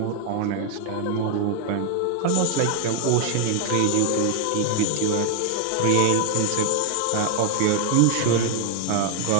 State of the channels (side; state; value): both; different; correlation 0.00